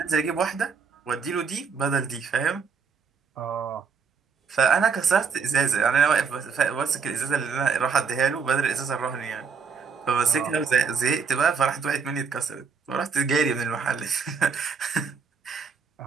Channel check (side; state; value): left; quieter; 5.8 dB